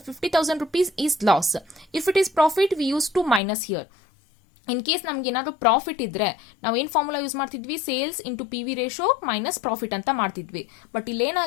rupees is loss. If it is profit we used to minus here. In case ನಮ್ಗೆ ಏನಾದರೂ profit ಇದ್ರೆ ನಾವು ಏನು formula use ಮಾಡ್ತಿದ್ವಿ? Sales into PV ratio minus profit ಅಂತ ಮಾಡ್ತಿದ್ವಿ. But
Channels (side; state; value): right; drops out; at 3.4 s